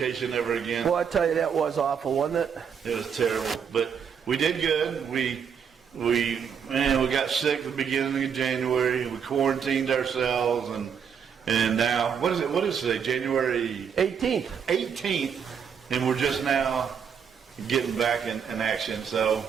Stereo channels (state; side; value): quieter; left; 7.2 dB